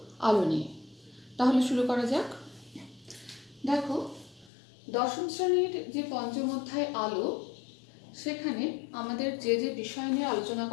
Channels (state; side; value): drops out; right; at 4.5 s